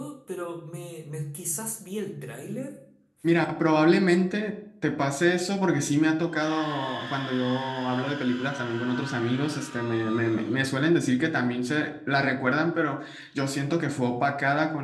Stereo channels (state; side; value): identical; both; correlation 1.00